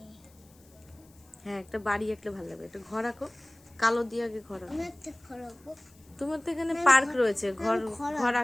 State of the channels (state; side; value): noise; left; hiss, 29 dB below the sound